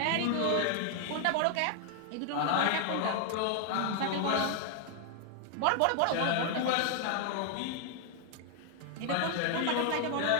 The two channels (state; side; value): different; both; correlation 0.00